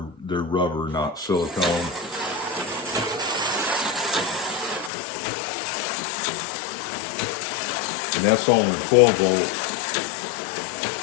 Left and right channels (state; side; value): drops out; right; at 4.9 s